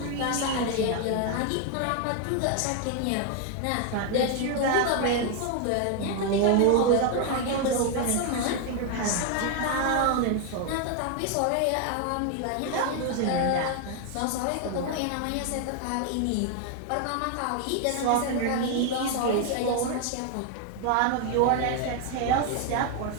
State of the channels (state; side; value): different; both; correlation 0.01